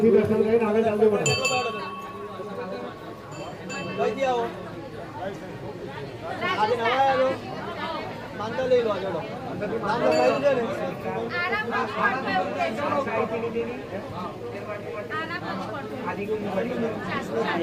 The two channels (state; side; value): identical; both; correlation 1.00